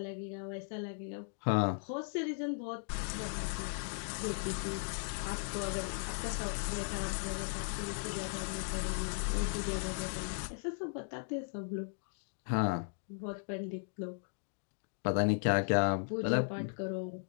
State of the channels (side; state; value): right; silent; digital silence